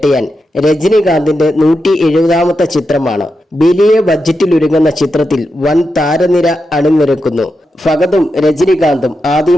രജനികാന്തിന്റെ 170ാമത്തെ ചിത്രമാണ്. വലിയ ബഡ്ജറ്റിലൊരുങ്ങുന്ന ചിത്രത്തിൽ വൻ താരനിര അണിനിരക്കുന്നു. ഫഹദും രജനികാന്തും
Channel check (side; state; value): both; normal; correlation 0.87